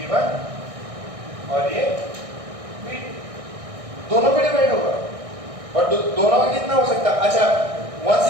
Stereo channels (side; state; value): left; late; 1.6 ms